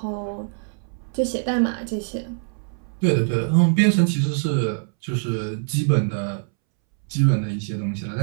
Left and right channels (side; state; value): left; silent; 63 dB below the other